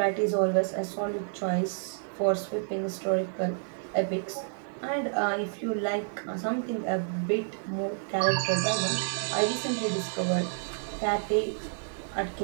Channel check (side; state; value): left; silent; digital silence